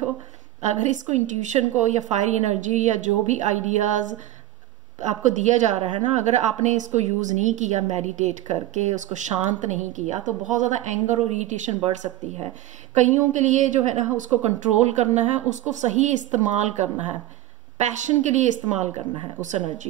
अगर इसको इंट्यूशन को या फायरी एनर्जी या जो भी आइडियाज आपको दिया जा रहा है ना, अगर आपने इसको यूज़ नहीं किया मेडिटेट करके, उसको शांत नहीं किया, तो बहुत ज़्यादा एंगर और इरिटेशन बढ़ सकती है। कईयों के लिए जो है ना उसको कंट्रोल करना है, उसको सही इस्तेमाल करना है, पैशन के लिए इस्तेमाल करना है उस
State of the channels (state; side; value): quieter; left; 14.7 dB